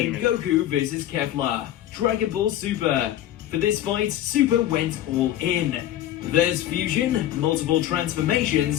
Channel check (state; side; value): quieter; right; 12.6 dB